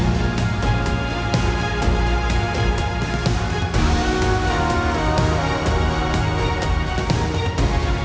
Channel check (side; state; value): both; identical; correlation 1.00